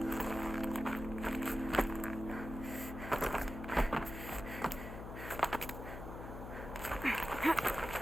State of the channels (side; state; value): left; noise; hum, 9 dB below the sound